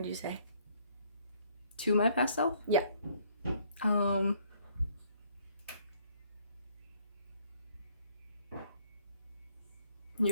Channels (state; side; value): inverted; both; correlation -0.63